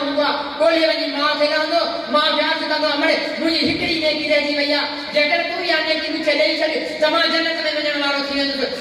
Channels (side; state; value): both; identical; correlation 1.00